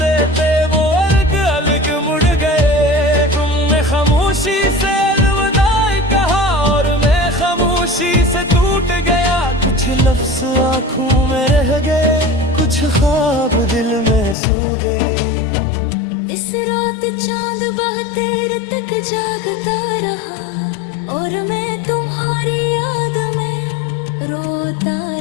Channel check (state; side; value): drops out; right; at 14.4 s